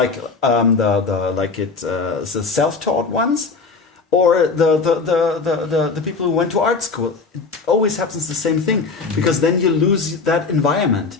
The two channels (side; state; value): right; quieter; 4.5 dB